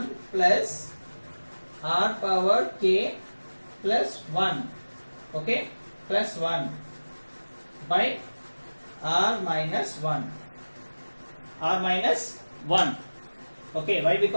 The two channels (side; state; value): both; inverted; correlation -1.00